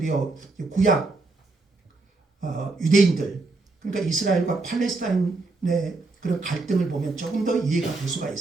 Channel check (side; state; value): left; quieter; 3.5 dB